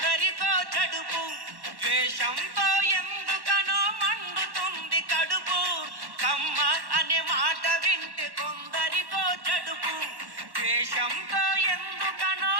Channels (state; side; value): late; left; 1.1 ms